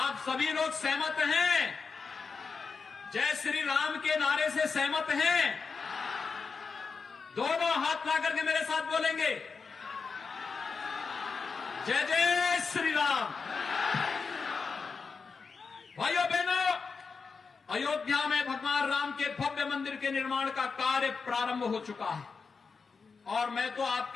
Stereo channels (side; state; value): right; quieter; 5.0 dB